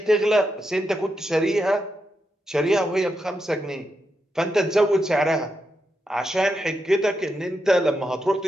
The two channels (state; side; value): normal; both; correlation 0.85